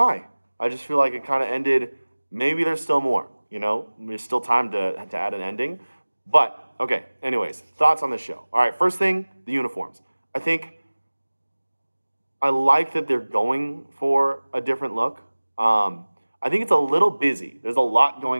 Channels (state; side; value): inverted; both; correlation -1.00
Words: I just feel like it kind of ended, maybe there's still more, you know? There's still time to add an ending. But, okay, anyways, thoughts on the show. All right, first thing, the uniforms. I like that they're going for a different look. I think it's a little busy. There's a lot